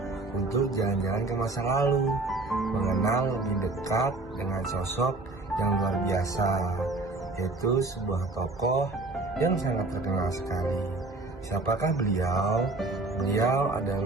untuk jalan-jalan ke masa lalu, mengenal lebih dekat dengan sosok yang luar biasa, yaitu sebuah tokoh yang sangat terkenal sekali. Siapakah beliau? Beliau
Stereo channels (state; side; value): quieter; left; 3.1 dB